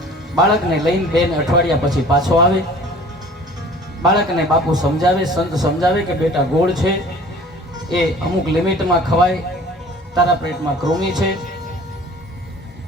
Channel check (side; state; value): both; normal; correlation 0.47